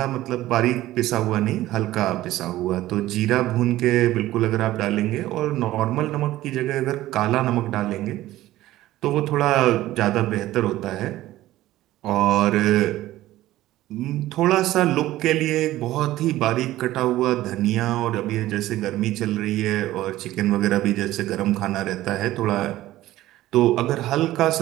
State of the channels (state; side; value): quieter; left; 15.5 dB